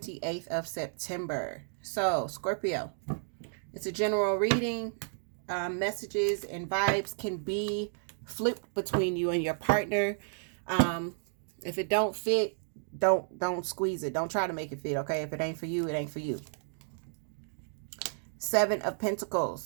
of September. So, Scorpio, it's a general reading. Messages and vibes can be flipped between you and your partner. If it don't fit, don't squeeze it. Don't try to make it fit, okay? If it ain't for you, it ain't for you. Seven of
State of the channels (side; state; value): left; silent; digital silence